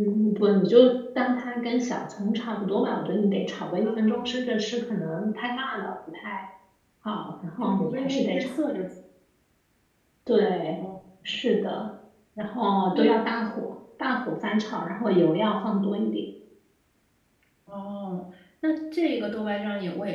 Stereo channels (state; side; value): identical; both; correlation 1.00